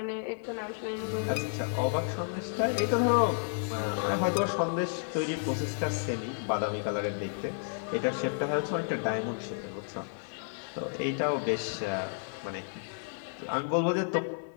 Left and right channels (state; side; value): silent; right; digital silence